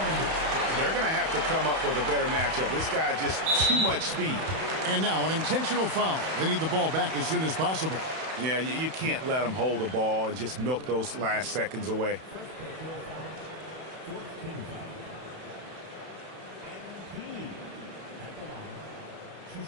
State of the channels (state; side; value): late; left; 31 ms